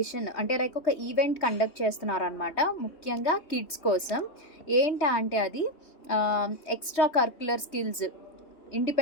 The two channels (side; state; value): right; late; 3.2 ms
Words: అంటే లైక్ ఒక ఈవెంట్ కండక్ట్ చేస్తున్నారనమాట. ముఖ్యంగా కిడ్స్ కోసం. ఏంటా అంటే అది extra curricular skills